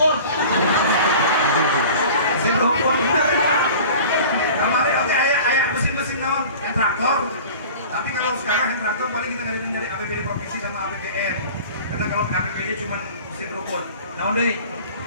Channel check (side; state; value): both; inverted; correlation -0.41